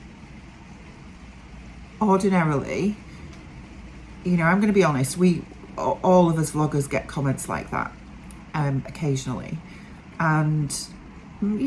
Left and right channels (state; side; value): identical; both; correlation 1.00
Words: ordinarily, you know, I'm going to be honest, all of us vloggers get comments like that occasionally, and